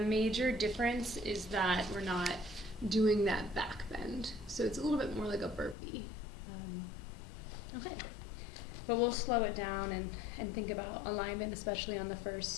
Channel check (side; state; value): right; drops out; at 5.8 s